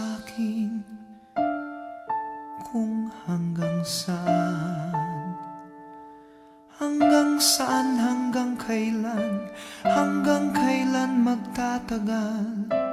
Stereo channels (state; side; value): identical; both; correlation 1.00